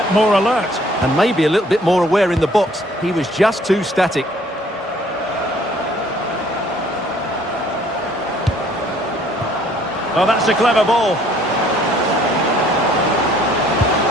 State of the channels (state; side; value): normal; both; correlation 0.59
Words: more alert. And maybe a little bit more aware in the box. He was just too static. Oh, that's a clever ball.